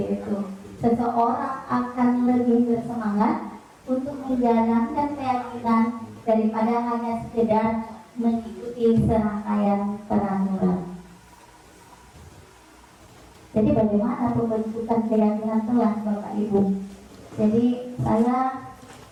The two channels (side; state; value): both; identical; correlation 1.00